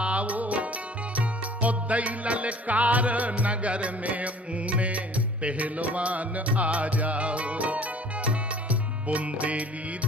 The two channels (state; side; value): normal; both; correlation 0.50